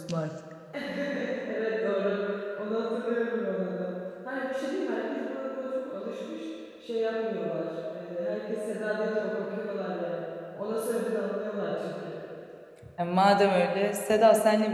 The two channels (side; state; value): both; identical; correlation 1.00